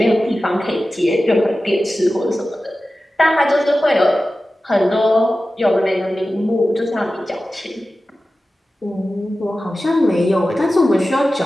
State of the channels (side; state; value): both; normal; correlation 0.95